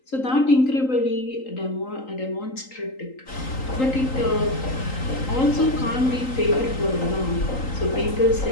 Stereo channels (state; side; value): late; right; 3.8 ms